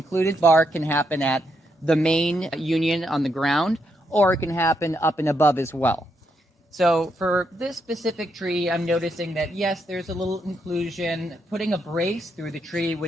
bark can happen at the main union on the ground, or it can happen up and above as well. So for this specific tree, I'm noticing that yes, there's a little inclusion. Putting a brace through the tree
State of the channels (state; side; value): normal; both; correlation 0.79